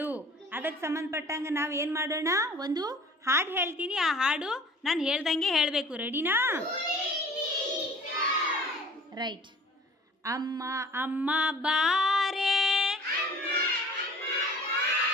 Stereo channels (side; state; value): both; normal; correlation 0.48